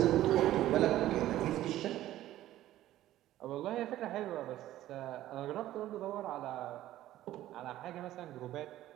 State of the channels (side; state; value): left; quieter; 14.0 dB